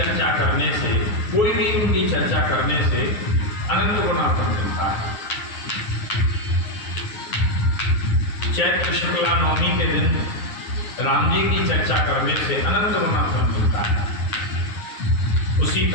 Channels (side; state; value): right; late; 9.3 ms